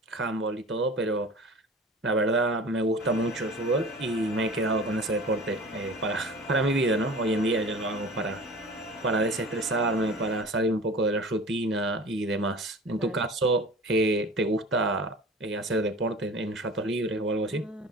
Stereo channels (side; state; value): both; normal; correlation 0.40